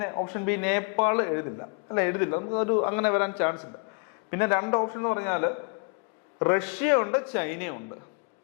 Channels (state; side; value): quieter; right; 35.3 dB